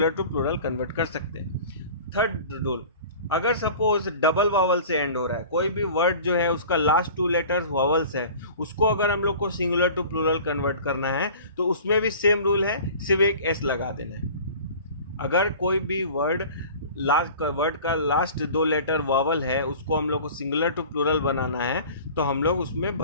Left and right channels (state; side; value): inverted; both; correlation -0.42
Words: टू प्लूरल कन्वर्ट कर सकते हैं। थर्ड रूल, अगर सपोज डबल वावल से एंड हो रहा है, कोई भी वर्ड जो है उसका लास्ट 2 लेटर्स वावल्स है, उसको अगर हम लोग को सिंगुलर टू प्लूरल कन्वर्ट करना है तो उसमें भी सेम रूल है, सिर्फ एक S लगा देना है। अगर कोई भी वर्ड का लास्ट 2 लेटर वावल है उसको हम लोग को सिंगुलर टू प्लूरल बनाना है तो हम लोग उसमें